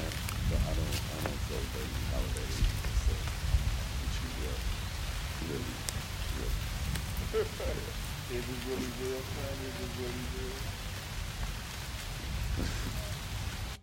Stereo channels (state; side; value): identical; both; correlation 1.00